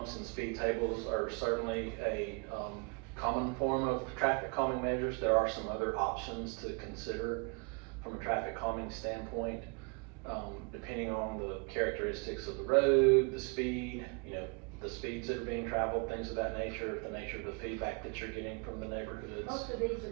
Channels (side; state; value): left; quieter; 33.8 dB